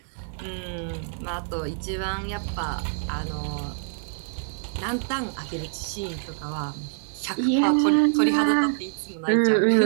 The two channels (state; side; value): silent; left; 61 dB below the other